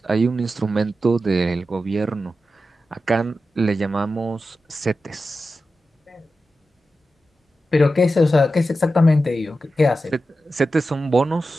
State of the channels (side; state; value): both; normal; correlation 0.92